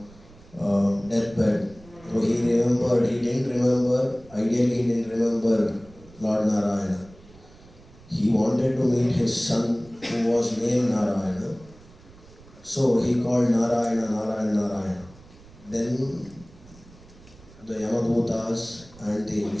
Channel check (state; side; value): noise; right; rumble, 23 dB below the sound